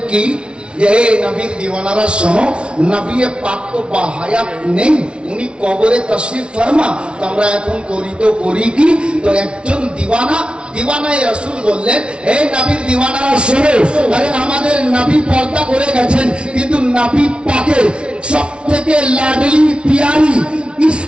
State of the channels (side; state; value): left; late; 0.058 ms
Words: কি যে হে নবীর দিওয়ানারা শোনো, নবী পাক তো বাহায়াত নেই, উনি কবরে তশরিফ ফরমা। তো আমরা এখন করি তো করি কি? তো একজন দিওয়ানায়ে রাসূল বললেন, হে নবীর দিওয়ানারা শোনো, আরে আমাদের নবী পর্দা করে গেছেন, কিন্তু নবী পাকের সবথেকে লাডলি পিয়ারি